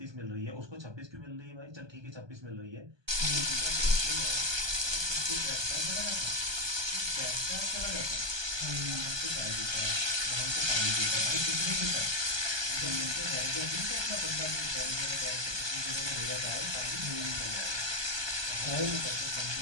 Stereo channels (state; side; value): late; left; 1.2 ms